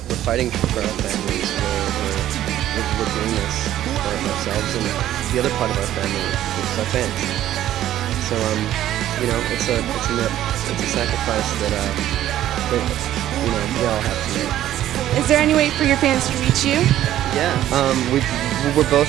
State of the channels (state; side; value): quieter; left; 12.6 dB